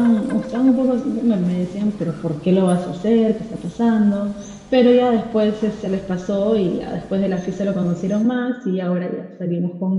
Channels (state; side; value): identical; both; correlation 1.00